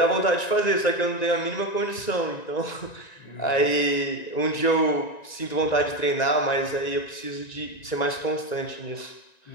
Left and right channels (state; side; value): late; right; 1.9 ms